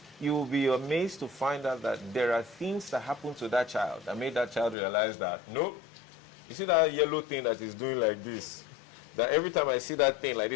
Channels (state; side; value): drops out; right; at 4.8 s